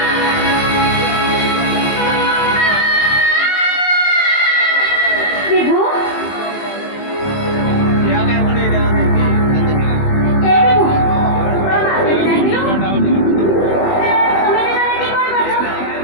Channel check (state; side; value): late; right; 20 ms